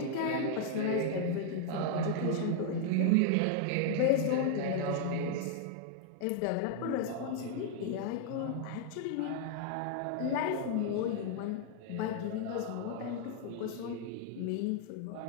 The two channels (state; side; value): different; both; correlation 0.00